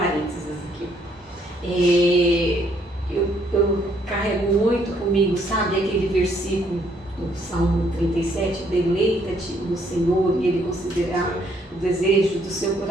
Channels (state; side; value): normal; both; correlation 0.68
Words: aqui. Eu carrego muito comigo, sabe, aquele versículo do Salmo 37, deleita-te no Senhor e Ele considerará o desejo do seu